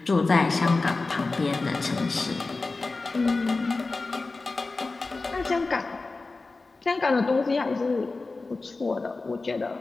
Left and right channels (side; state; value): right; quieter; 3.6 dB